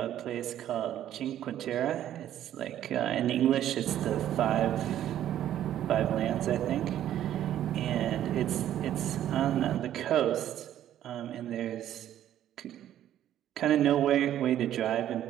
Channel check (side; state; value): left; quieter; 11.6 dB